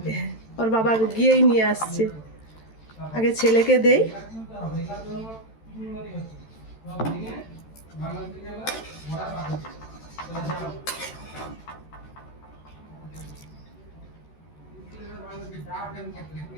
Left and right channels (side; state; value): right; late; 13 ms